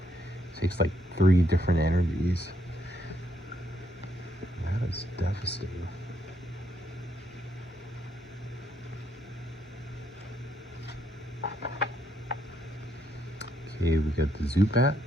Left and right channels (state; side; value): normal; both; correlation 0.75